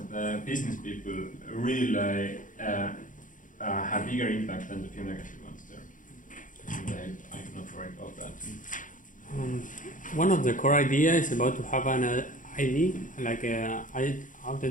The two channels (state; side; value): late; right; 0.38 ms